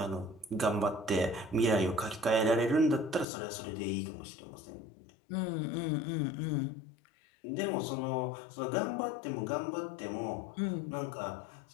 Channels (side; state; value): right; drops out; at 3.2 s